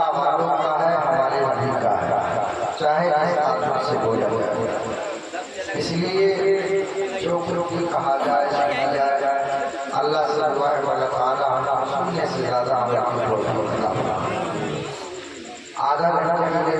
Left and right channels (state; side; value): identical; both; correlation 1.00